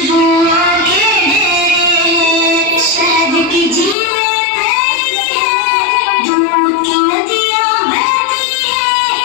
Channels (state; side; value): drops out; right; at 4.0 s